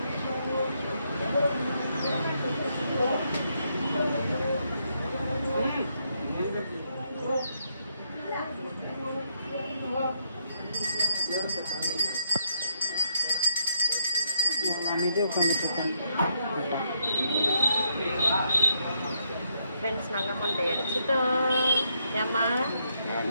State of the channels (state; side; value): inverted; both; correlation -0.76